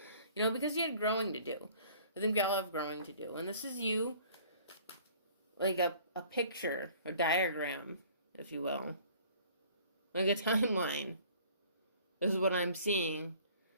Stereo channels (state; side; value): inverted; both; correlation -0.52